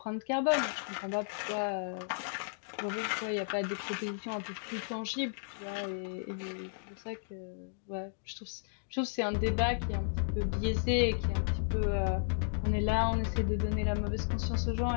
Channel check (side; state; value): right; silent; digital silence